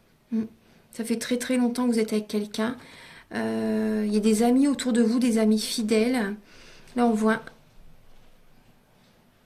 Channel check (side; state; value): both; identical; correlation 1.00